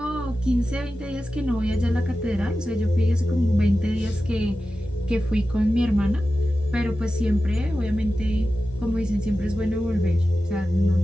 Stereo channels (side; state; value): both; normal; correlation 0.93